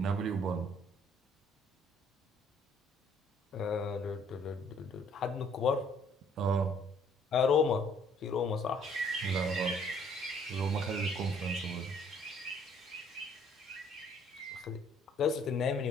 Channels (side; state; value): both; normal; correlation 0.61